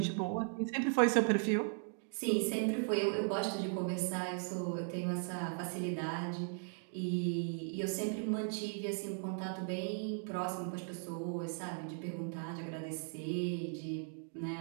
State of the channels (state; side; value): silent; left; 53 dB below the other